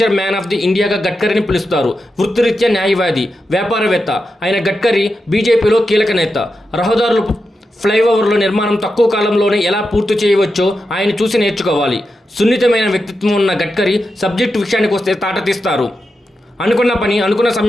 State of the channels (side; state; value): both; normal; correlation 0.89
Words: man of the ఇండియాగా గడ్కరీని పిలుస్తారు. వృత్తిరీత్యా న్యాయవాది, వ్యాపారవేత్త అయిన గడ్కరీ బీజేపీలో కీలక నేత. రహదారులు, ఫ్లైఓవర్ల నిర్మాణం తక్కువ కాలంలోనే ఎలా పూర్తి చేయవచ్చో ఆయన చూసి నేర్చుకోవాలి. సున్నితమైన వ్యక్తిత్వం ఉన్న గడ్కరీ సబ్జెక్టు విషయానికి వస్తే తాట తీస్తారు. అనుకున్న పని అనుకున్న